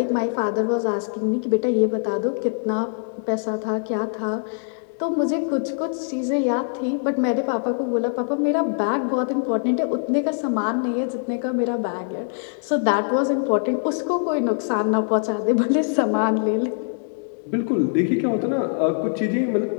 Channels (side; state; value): right; silent; digital silence